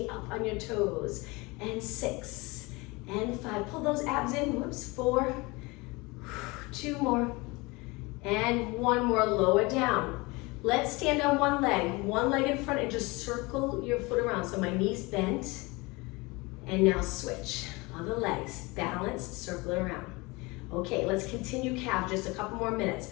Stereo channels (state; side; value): quieter; right; 24.7 dB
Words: up on your toes. And 6, and 5. Pull those abs in, whoops, 4, 2 more, and 1 more, lower down. Let's stand on 1 leg in front, and just circle your foot around. So my knees bent, and now switch. Other legs, balance, circle it around. Okay, let's continue calf, just a couple more